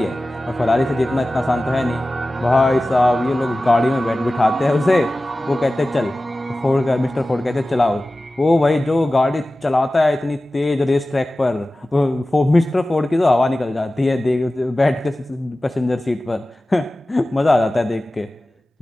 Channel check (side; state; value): both; normal; correlation 0.96